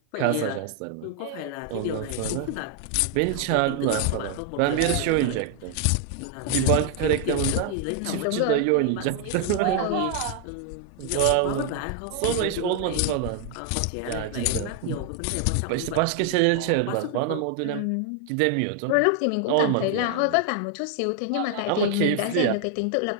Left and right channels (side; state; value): both; different; correlation 0.00